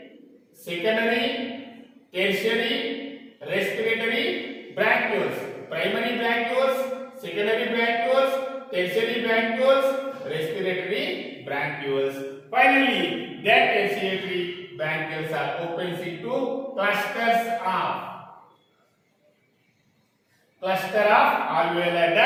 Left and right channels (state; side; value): identical; both; correlation 1.00